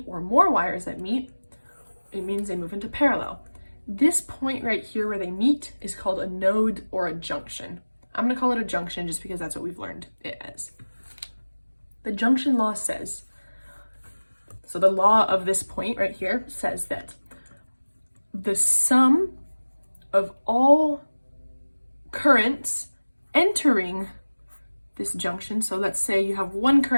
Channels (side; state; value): both; inverted; correlation -1.00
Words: or more wires that meet, it means they move into parallel. This point right here where they meet is called a node or a junction. I'm going to call it a junction just because that's what we've learned it as. The junction law says, so the law of this point right here says that the sum of all currents entering this junction, so let's say you have one